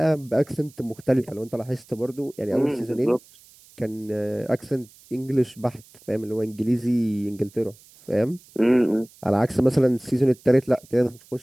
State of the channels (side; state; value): right; noise; hiss, 26 dB below the sound